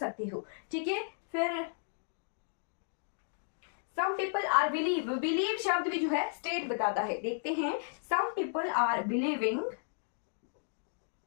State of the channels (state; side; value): silent; right; digital silence